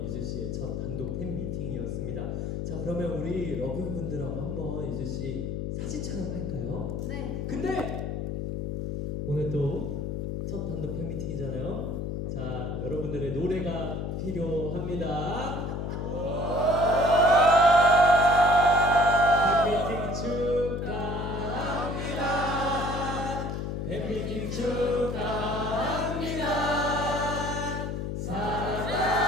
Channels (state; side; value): noise; left; hum, 3 dB below the sound